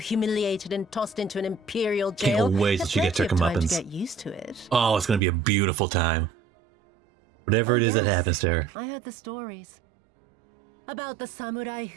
humiliated and tossed into an imperial jail? Can't wait till she gets her comeuppance. To get used to it. Oh, it's gonna be a beautiful time. Whatever it is that happens to her. I heard the stories. About the samurai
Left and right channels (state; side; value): drops out; left; at 5.2 s